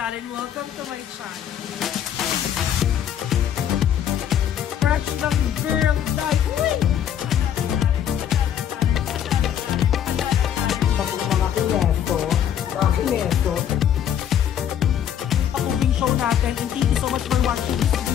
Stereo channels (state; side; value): quieter; right; 9.6 dB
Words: Welcome to my channel. Fresh ng girl life! Mga kineto. Pag-uwing show natin, and thank you so much for watching this